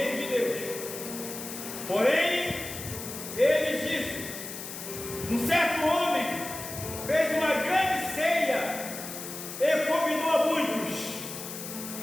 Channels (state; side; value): noise; left; hiss, 9 dB below the sound